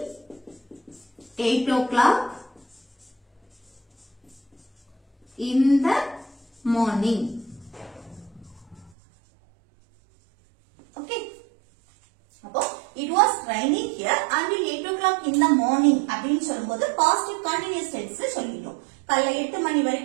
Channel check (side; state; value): left; drops out; at 8.9 s